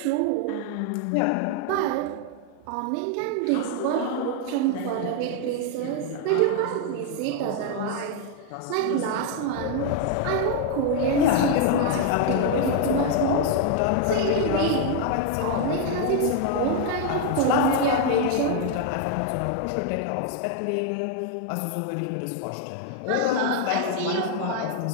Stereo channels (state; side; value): different; both; correlation 0.00